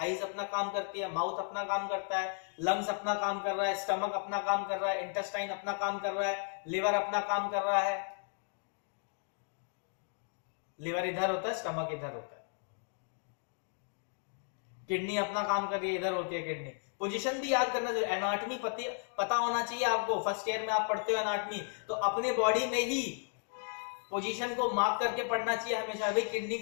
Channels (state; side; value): silent; right; 55 dB below the other